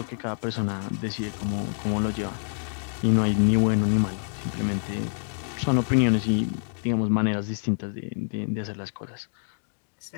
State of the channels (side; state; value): right; silent; digital silence